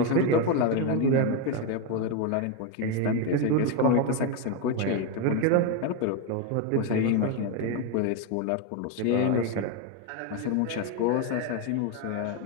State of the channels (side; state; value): both; different; correlation 0.02